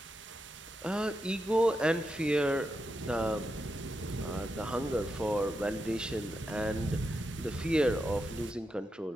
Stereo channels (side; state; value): both; normal; correlation 0.86